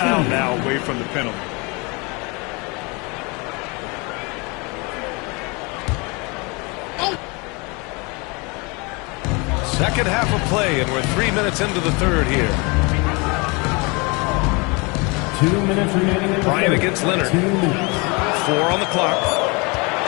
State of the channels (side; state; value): right; quieter; 28.7 dB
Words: now away from the penalty. Second half of play, and we're 3 minutes into the 3rd here. 2 minutes remaining. Bryant against Leonard. 4 on the clock.